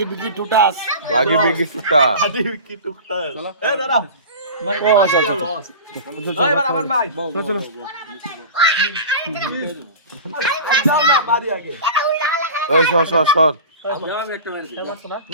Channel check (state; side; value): inverted; both; correlation -0.34